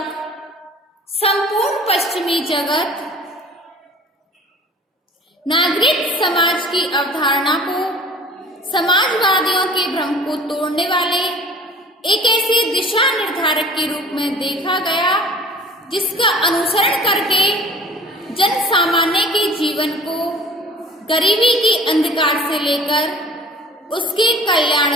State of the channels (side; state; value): both; normal; correlation 0.46